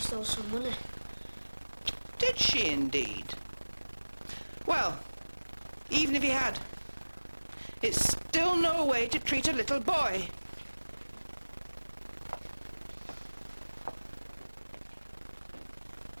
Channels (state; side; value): inverted; both; correlation -1.00